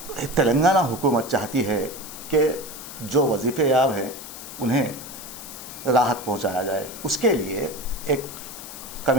तेलंगाना हुकूमत चाहती है कि जो वजीफ़े याब हैं उन्हें राहत पहुंचाया जाए। उसके लिए एक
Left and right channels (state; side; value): noise; left; hiss, 12 dB below the sound